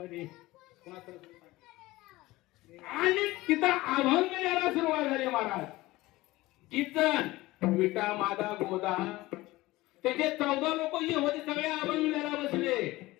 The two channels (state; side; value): quieter; right; 19.0 dB